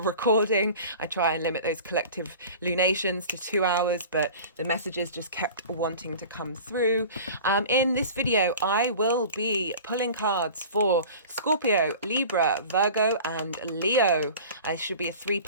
I try and limit those collective lunations to 2 hours, but the messages just kept wanting to come through. In this video, I will be pulling cards for Scorpio, Libra, Virgo, and Leo. It should be a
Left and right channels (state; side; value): inverted; both; correlation -0.40